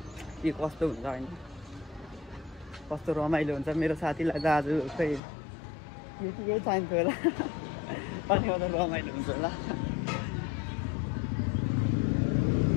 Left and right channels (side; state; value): right; drops out; at 5.2 s